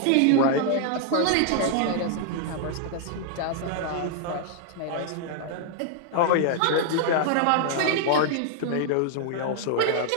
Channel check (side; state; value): both; different; correlation -0.01